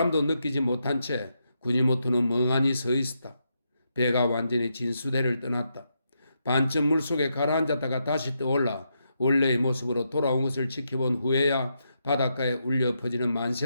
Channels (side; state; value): both; inverted; correlation -0.82